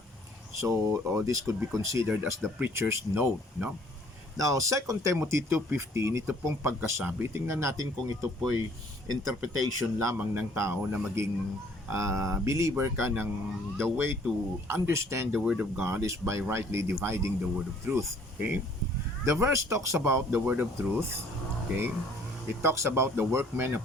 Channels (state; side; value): normal; both; correlation 0.59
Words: So, this could be considered as the preacher's note, no? Now, 2 Timothy 2:15, ito pong pagkasabi, tingnan natin kung ito po'y interpretation lamang ng tao na maging believer ka ng the way to understand the Word of God is by rightly dividing the Word of truth, okay? The verse talks about the Word of truth, okay? It talks about the workman